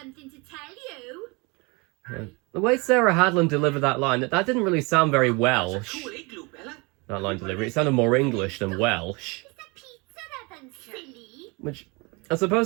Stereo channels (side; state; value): left; quieter; 28.2 dB